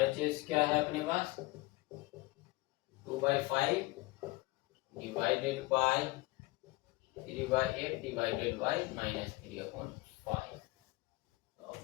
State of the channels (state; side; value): quieter; right; 21.4 dB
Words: क्या है अपने पास, 2/5 डिवाइडेड बाय 3/8 डिवाइडेड बाय -3/5। तो